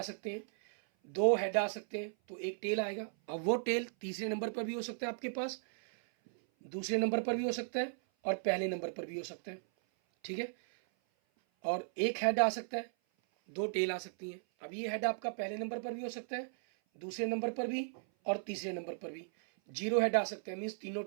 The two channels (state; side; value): silent; left; 54 dB below the other